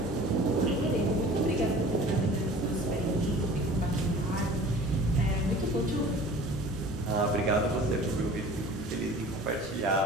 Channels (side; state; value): both; normal; correlation 0.44